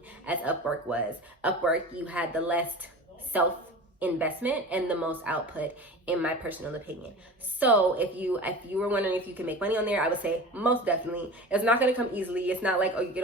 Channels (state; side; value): normal; both; correlation 0.34